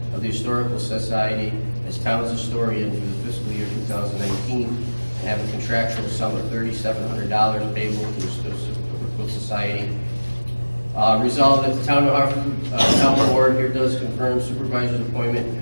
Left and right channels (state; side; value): inverted; both; correlation -1.00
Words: of the Historical Society as town's historian for the fiscal year 2019 and have a contractual sum of $3,700 payable to the Historical Society Resolved that the Town of Hartford Town Board here does confirm supervisor's